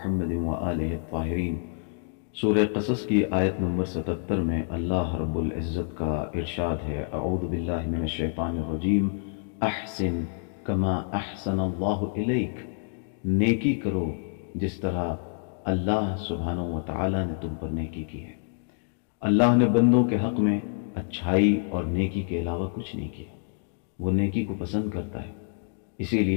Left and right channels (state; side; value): silent; right; 60 dB below the other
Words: وآلہ الطاہرین۔ سورہ قصص کی آیت نمبر 77 میں اللہ رب العزت کا ارشاد ہے، اعوذ باللہ من الشیطان الرجیم، احسن کما احسن اللہ الیک، نیکی کرو جس طرح اللہ سبحانہ و تعالی نے تم پر نیکی کی ہے۔ اللہ نے بندوں کے حق میں اچھائی اور نیکی کے علاوہ کچھ نہیں کیا۔ وہ نیکی کو پسند کرتا ہے، اسی